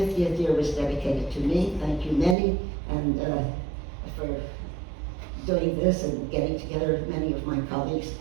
year was dedicated to me. Thank you, many, and for doing this and getting together many of my colleagues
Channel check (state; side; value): drops out; left; at 2.4 s